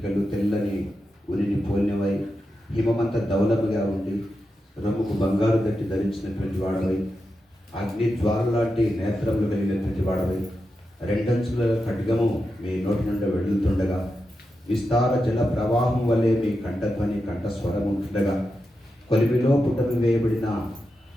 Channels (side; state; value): both; normal; correlation 0.89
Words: తెల్లని ఉరిని పోలినవై హిమమంత దౌలముగా ఉండి రొమ్ముకు బంగారు దట్టి ధరించినటువంటి వాడవై అగ్ని జ్వాలలాంటి నేత్రములు కలిగినటువంటి వాడవై రెండంచుల ఖడ్గము మీ నోటి నుండి వెళ్తుండగా విస్తార జల ప్రవాహం వలె మీ కంఠధ్వని కంఠస్వరం ఉంటుండగా కొలిమిలో పుటమి వేయబడిన